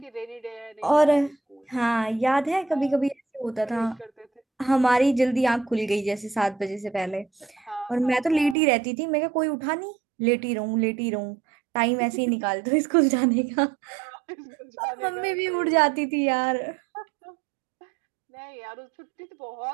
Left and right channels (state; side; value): drops out; left; at 8.6 s